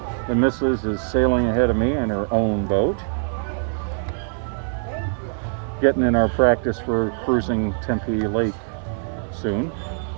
the missus is sailing ahead of me in her own boat, getting in our practice for cruising Tempe Lake soon.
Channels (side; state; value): left; silent; digital silence